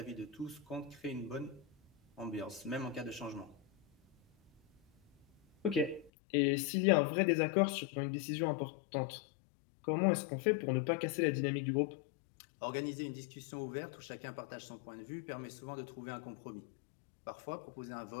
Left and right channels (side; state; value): right; drops out; at 6.1 s